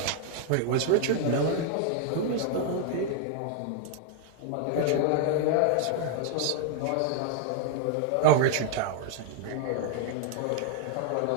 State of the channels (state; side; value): different; both; correlation -0.01